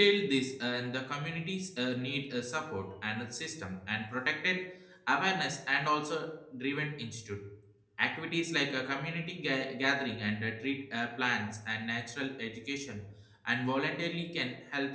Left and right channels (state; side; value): identical; both; correlation 1.00